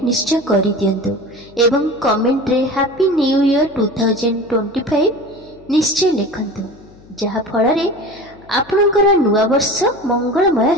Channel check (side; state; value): left; noise; hum, 25 dB below the sound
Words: निश्चय करि दियंतु एवं कमेंट रे हैप्पी न्यू ईयर 2025 निश्चय लिखंतु, जहा फल रे आपणकर नुआ वर्ष मंगलमय